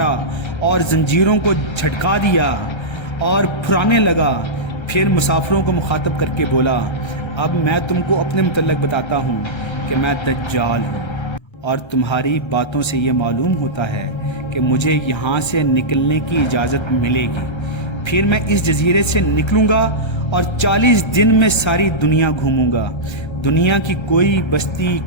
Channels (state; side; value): late; right; 1.3 ms